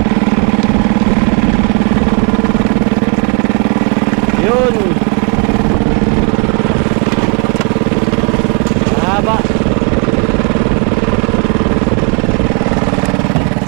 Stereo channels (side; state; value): left; quieter; 35.2 dB